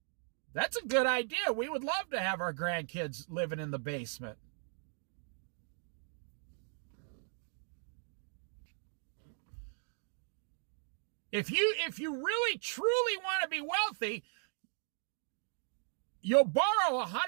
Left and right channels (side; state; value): left; silent; 53 dB below the other